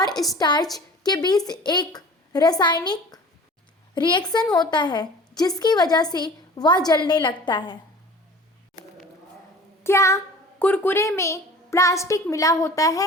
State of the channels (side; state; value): both; normal; correlation 0.43